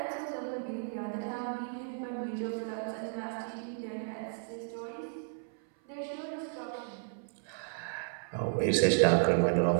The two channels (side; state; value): left; silent; 56 dB below the other